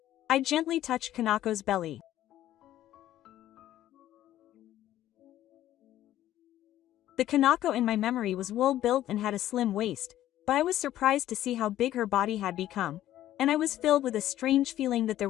I gently touched Kanako's belly. The Kanako in my memory was well-built and had a slim waist, but I was surprised to see how big her body had become, and I was filled with a strange feeling that there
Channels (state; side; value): quieter; right; 13.1 dB